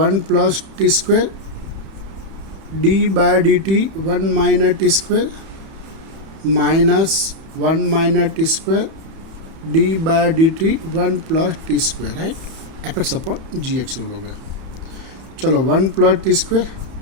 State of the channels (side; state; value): left; late; 31 ms